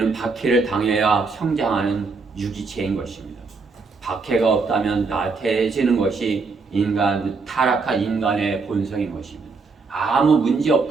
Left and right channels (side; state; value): left; quieter; 4.4 dB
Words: 박해를 당해야 성장하는 유기체인 것입니다. 박해가 없다면 나태해지는 것이 타락한 인간의 본성인 것입니다. 아무 문제